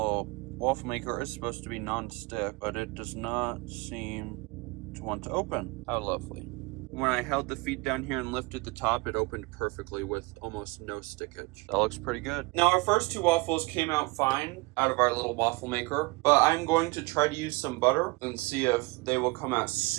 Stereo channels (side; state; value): left; quieter; 25.4 dB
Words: waffle maker is supposed to be non-stick, but it does not seem to want to open. How lovely. When I held the feet down here and lifted the top, it opened perfectly with almost no stickage. That looks pretty good. Now, our first two waffles came out fine out of our little waffle maker, but I'm going to try to use some butter and see if they will come out